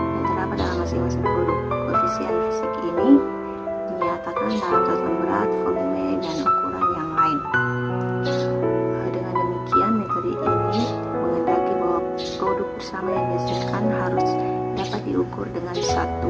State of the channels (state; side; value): identical; both; correlation 1.00